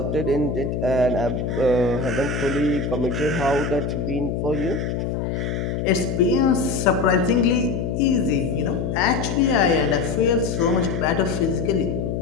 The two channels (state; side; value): noise; left; hum, 2 dB below the sound